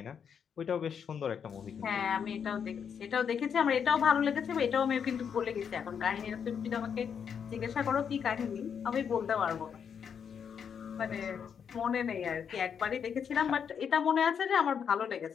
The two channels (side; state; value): right; quieter; 7.3 dB